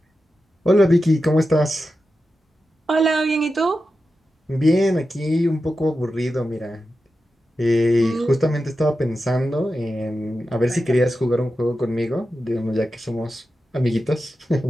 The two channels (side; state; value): both; normal; correlation 0.91